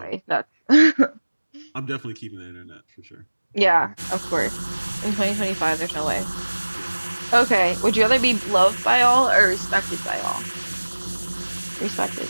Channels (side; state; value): both; inverted; correlation -1.00